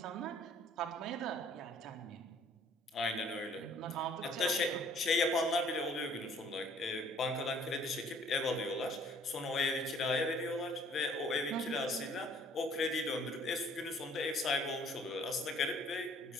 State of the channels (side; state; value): both; normal; correlation 0.58